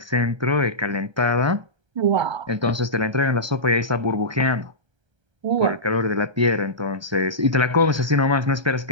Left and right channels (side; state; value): left; late; 1.3 ms